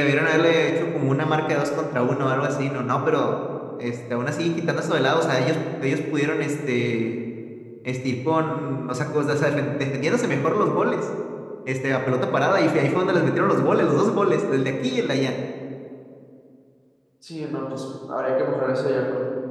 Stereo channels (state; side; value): identical; both; correlation 1.00